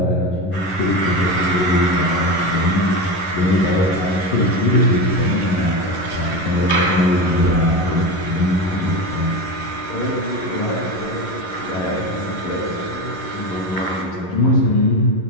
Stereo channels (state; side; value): late; right; 11 ms